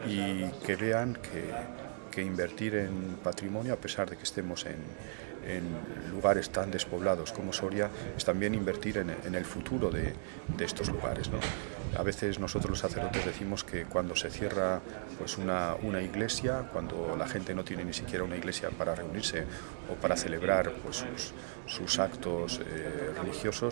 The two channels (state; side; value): silent; left; digital silence